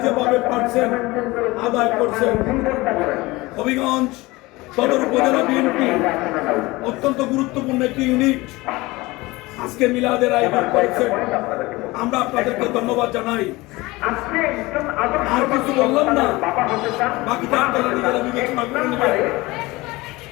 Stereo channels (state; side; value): quieter; right; 21.3 dB